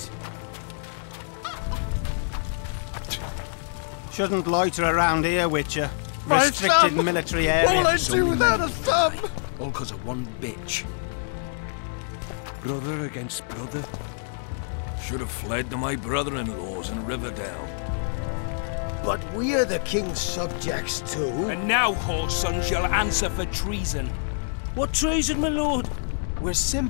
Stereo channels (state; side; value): silent; right; digital silence